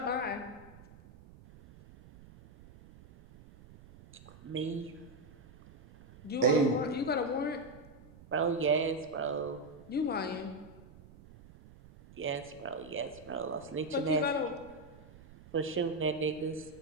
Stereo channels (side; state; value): right; noise; rumble, 21 dB below the sound